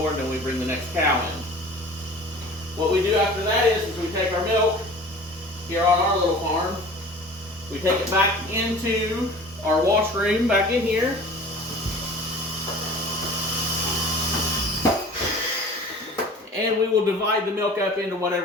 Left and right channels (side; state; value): both; normal; correlation 0.42